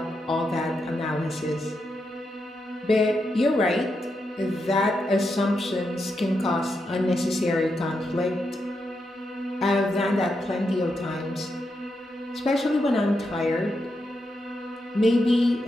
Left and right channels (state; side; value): normal; both; correlation 0.84